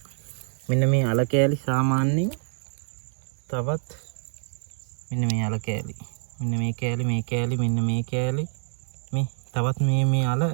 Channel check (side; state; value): left; silent; 61 dB below the other